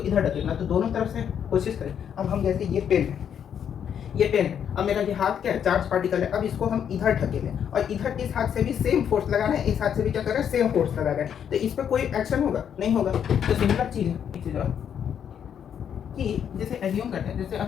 इधर ढकेलना, तो दोनों तरफ से कोशिश करें। अब हम जैसे ये पेन है, ये पेन है, अब मेरा ये हाथ क्या है? चार्ज पार्टिकल है, अब इसको हम इधर ढकेलें, और इधर इस हाथ से भी सेम फोर्स लगा रहे हैं, इस हाथ से भी क्या कर रहे हैं? सेम फोर्स लगा रहे हैं, तो इस पर कोई एक्शन होगा? नहीं होगा। तो सिमिलर चीज है, कि जैसे एज्यूम करते हैं, जैसे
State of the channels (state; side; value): quieter; right; 8.5 dB